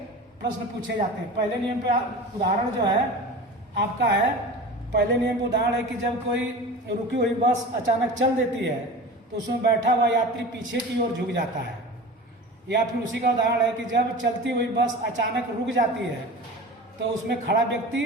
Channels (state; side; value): normal; both; correlation 0.34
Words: प्रश्न पूछे जाते हैं। पहले नियम पे उदाहरण जो है आपका है, पहले नियम का उदाहरण है कि जब कोई रुकी हुई बस अचानक चल देती है तो उसमें बैठा हुआ यात्री पीछे की ओर झुक जाता है। या फिर उसी का उदाहरण है कि जब चलती हुई बस अचानक रुक जाती है तो उसमें खड़ा व्यक्ति